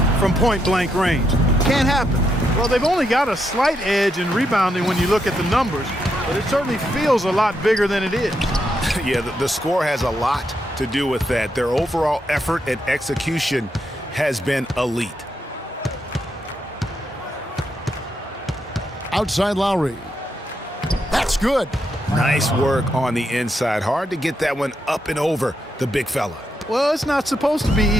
from point-blank range. Can't happen. Well, they've only got a slight edge in rebounding when you look at the numbers, but it certainly feels a lot bigger than it is. Yeah, the score has a lot to do with that. Their overall effort and execution has been elite. Outside Lowry. That's good. Nice work on the inside. Hard to get that one up and over the big fella. Well, it's not supposed to be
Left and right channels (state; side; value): normal; both; correlation 0.81